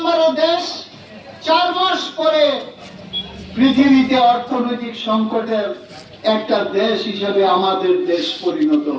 দেশ, 4 মাস পরে পৃথিবীতে অর্থনৈতিক সংকটের একটা দেশ হিসেবে আমাদের দেশ পরিণত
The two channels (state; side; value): identical; both; correlation 1.00